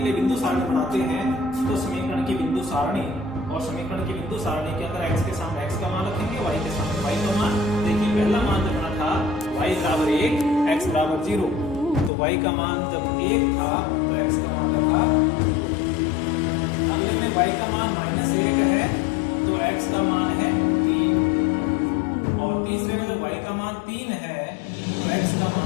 लिए बिंदु सारणी बनाते हैं। तो समीकरण की बिंदु सारणी, और समीकरण की बिंदु सारणी के अंदर x के सामने x का मान रखेंगे, y के सामने y का मान। देखिए पहला मान जब बना था y = 1 x = 0, तो y का मान जब 1 था तो x का मान रखा। अगले में y का मान -1 है तो x का मान है 3, और तीसरे में जब y का मान 3 है तो x का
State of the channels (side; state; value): right; drops out; at 12.1 s